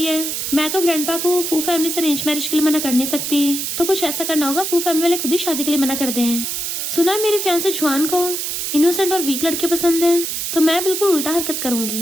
है मैं तो ग्रैंडपा को फू फैमिली से अरेंज मैरिज के लिए मना कर नहीं सकती, तो कुछ ऐसा करना होगा फू फैमिली वाले खुद ही शादी के लिए मना कर दें। सुना मेरे फियांसे जुआन को इनोसेंट और वीक लड़के पसंद है तो मैं बिल्कुल उल्टा हरकत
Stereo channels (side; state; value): right; noise; hiss, 3 dB below the sound